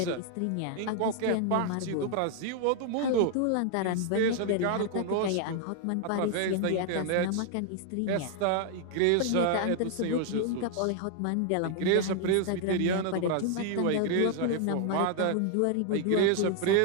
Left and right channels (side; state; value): both; different; correlation 0.00